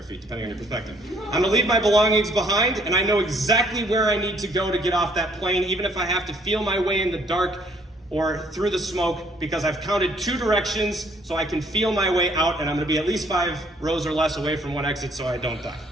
feet, depending on your perspective. I'm gonna leave my belongings behind, and I know exactly where I need to go to get off that plane, even if I have to feel my way in the dark or through the smoke, because I've counted 2 directions so I can feel my way out, and I'm gonna be at least 5 rows or less away from one exit so I don't die.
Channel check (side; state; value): both; normal; correlation 0.63